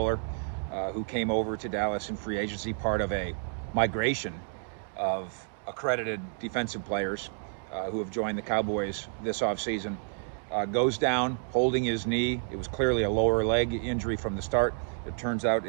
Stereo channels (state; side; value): silent; left; 58 dB below the other